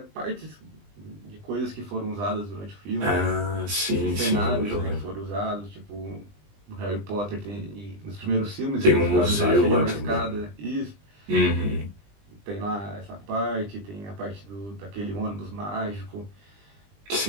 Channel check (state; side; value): late; left; 20 ms